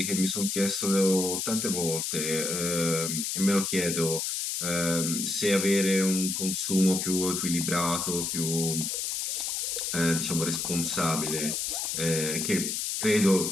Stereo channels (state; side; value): noise; left; hiss, 1 dB below the sound